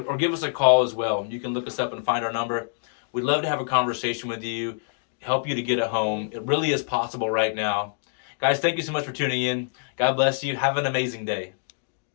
give us a call as well. You can look us up and find our number. We'd love to have a conversation with you, help you to get a home. It really is possible right now. Guys, thank you so much for tuning in. God bless you. Have an amazing day.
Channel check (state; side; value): silent; right; digital silence